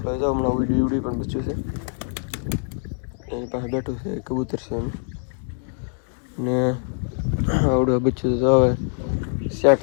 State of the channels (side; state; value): right; silent; digital silence